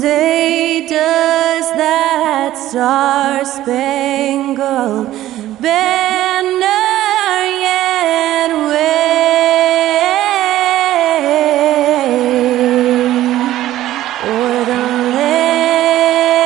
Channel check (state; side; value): quieter; left; 14.2 dB